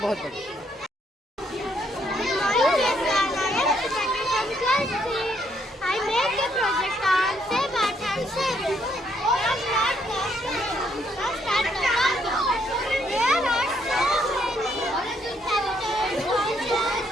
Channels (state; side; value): normal; both; correlation 0.71